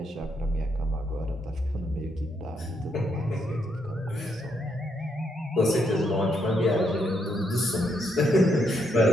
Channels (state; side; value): normal; both; correlation 0.76